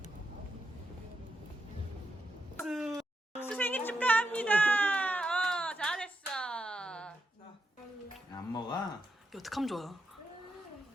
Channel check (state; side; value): normal; both; correlation 0.84